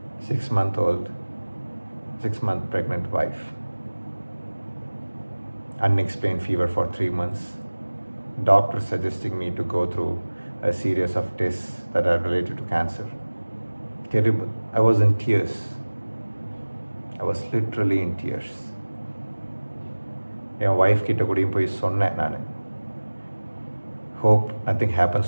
6-month-old, 6-month pregnant wife, unexplained fever for 3 months, doctor suggesting me to go through a series of tests that are related to cancer. Terrible. I was in tears. I was literally in tears. N wife கிட்ட கூடயும் போய் சொன்னேன் நான், hope nothing happens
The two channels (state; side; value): inverted; both; correlation -1.00